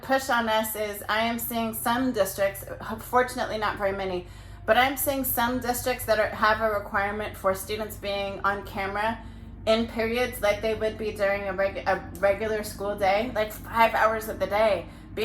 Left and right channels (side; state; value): both; identical; correlation 1.00